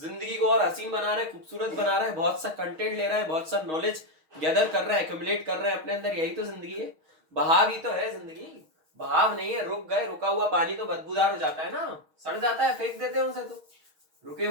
को और हसीन बना रहा है, खूबसूरत बना रहा है, बहुत सा कंटेंट ले रहा है, बहुत सा नॉलेज गैदर कर रहा है, एक्यूमुलेट कर रहा है अपने अंदर। यही तो जिंदगी है। बहाव ही तो है जिंदगी। बहाव नहीं है, रुक गए। रुका हुआ पानी तो बदबूदार हो जाता है ना, सड़ जाता है, फेंक देते हैं उसे तो। रुके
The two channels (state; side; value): late; left; 6.4 ms